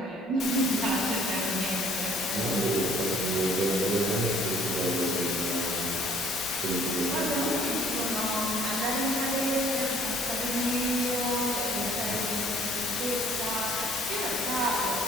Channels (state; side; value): normal; both; correlation 0.57